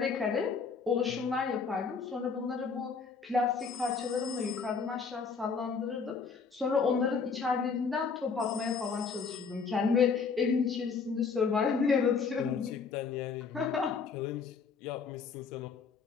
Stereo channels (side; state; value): right; quieter; 5.4 dB